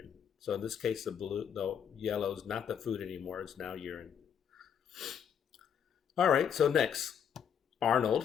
So in this case, the yellow is not the food anymore, it's now urine. All right, so next, Arnold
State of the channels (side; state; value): right; quieter; 8.0 dB